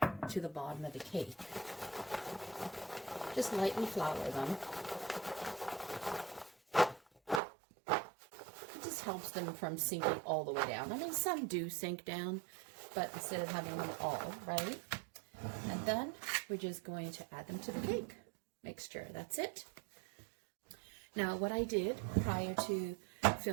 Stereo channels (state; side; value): drops out; left; at 7.4 s